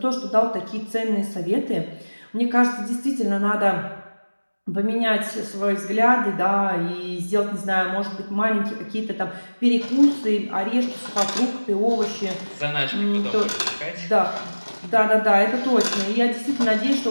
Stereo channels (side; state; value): both; inverted; correlation -1.00